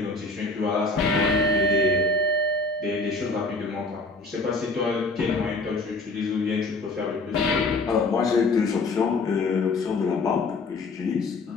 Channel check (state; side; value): quieter; right; 3.2 dB